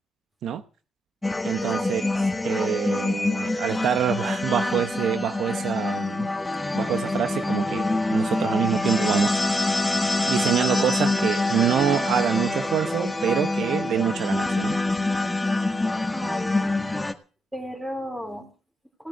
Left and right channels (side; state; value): both; normal; correlation 0.80